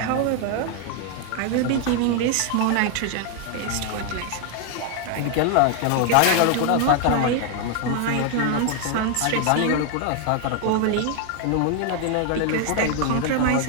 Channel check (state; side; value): different; both; correlation 0.00